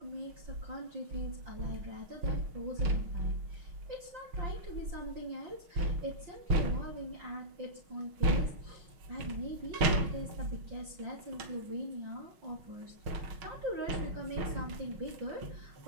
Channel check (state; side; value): late; left; 6.3 ms